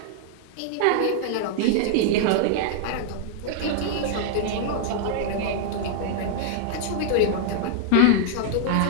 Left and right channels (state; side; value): different; both; correlation -0.01